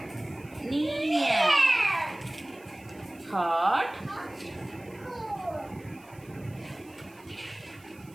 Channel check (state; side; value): noise; right; hiss, 26 dB below the sound